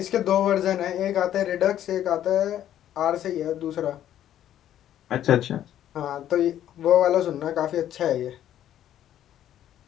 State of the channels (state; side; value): quieter; right; 11.4 dB